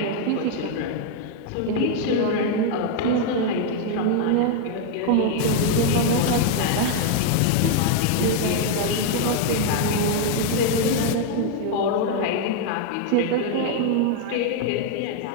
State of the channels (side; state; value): both; different; correlation 0.00